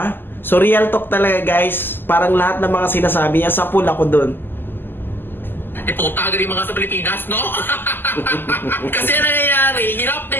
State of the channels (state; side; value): late; right; 0.095 ms